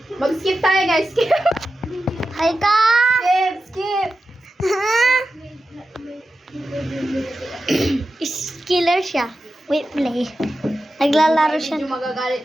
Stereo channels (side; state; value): both; normal; correlation 0.92